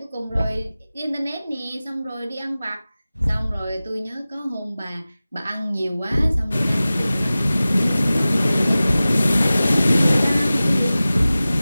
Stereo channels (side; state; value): both; inverted; correlation -0.97